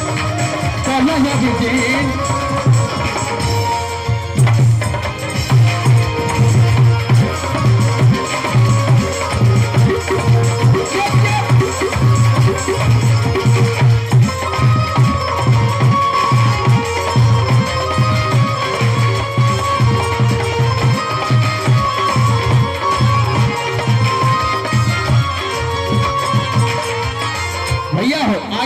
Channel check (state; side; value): identical; both; correlation 1.00